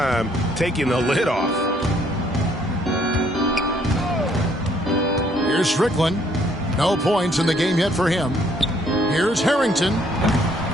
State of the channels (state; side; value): normal; both; correlation 0.66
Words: taking the lid off. Here's Strickland. No points in the game yet for him. Here's Harrington.